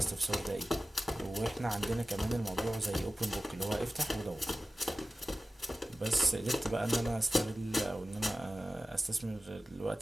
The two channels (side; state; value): both; normal; correlation 0.95